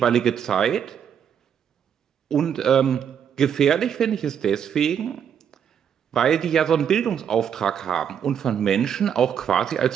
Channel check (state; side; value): quieter; left; 8.2 dB